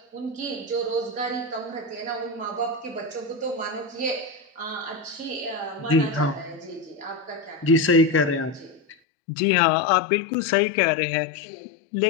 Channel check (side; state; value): right; drops out; at 9.0 s